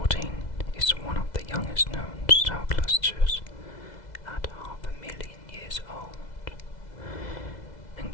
is one of the youngest known star clusters at 500,000 years old and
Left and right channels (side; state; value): right; late; 2.0 ms